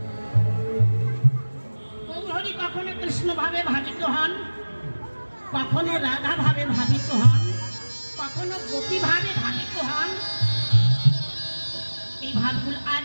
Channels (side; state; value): both; inverted; correlation -1.00